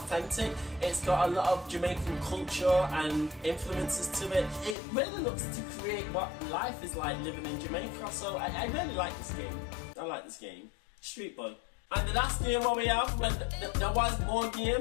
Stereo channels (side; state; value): right; drops out; at 4.8 s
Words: It's got a lot of Jamaican culture and influences to it. It really looks to create what life is like living in Jamaica, so I really like this game. I like this game. Street Boy. And the last game what we have, well, there was more